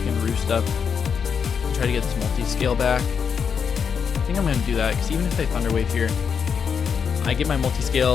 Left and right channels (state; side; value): quieter; right; 6.7 dB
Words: Roost up and try to get this multi-scale back. I think I'm going to do that, because even if they Thunder Wave here, I get my